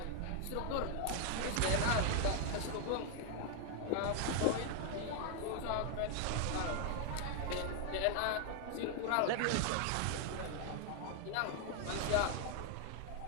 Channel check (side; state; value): both; different; correlation 0.01